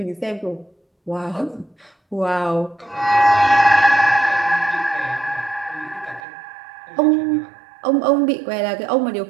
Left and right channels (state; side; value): drops out; left; at 6.2 s